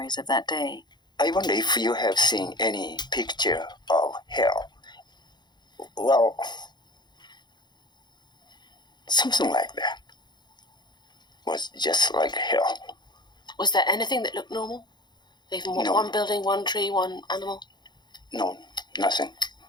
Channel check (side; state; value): right; late; 0.21 ms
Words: of that day. I wonder if you have seen any picture of hell. Well, something like that. Was just like hell. Was there anything that looked normal? Even No. one building, one tree, one animal? No, nothing.